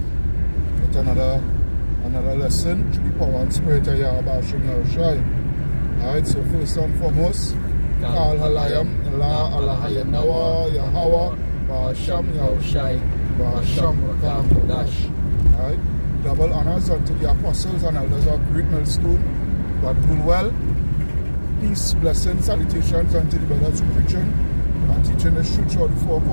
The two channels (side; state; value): both; inverted; correlation -1.00